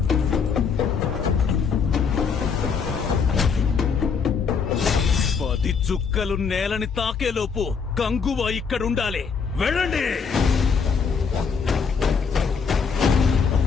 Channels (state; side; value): quieter; right; 5.9 dB